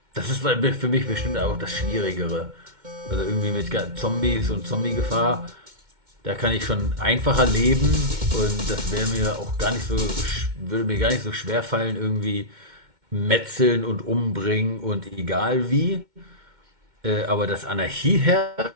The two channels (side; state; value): left; late; 2.1 ms